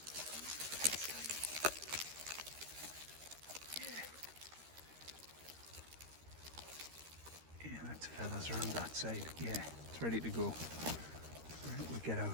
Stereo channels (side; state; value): left; late; 13 ms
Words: Yeah, that's feathers around that side. Yeah, it's ready to go. Right, we'll get